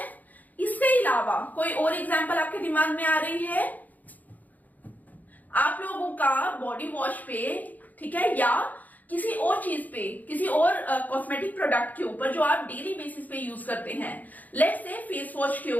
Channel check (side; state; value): right; late; 0.081 ms